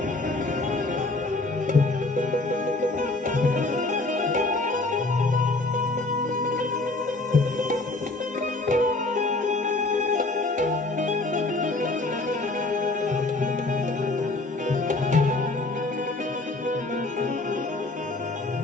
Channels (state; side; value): quieter; right; 3.1 dB